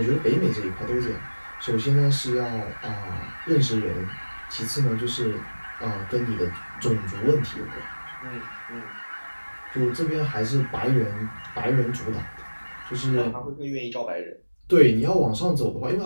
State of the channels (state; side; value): inverted; both; correlation -1.00